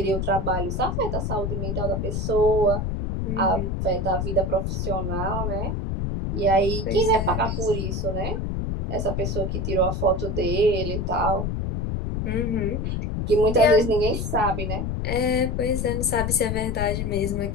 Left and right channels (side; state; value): left; noise; rumble, 1 dB below the sound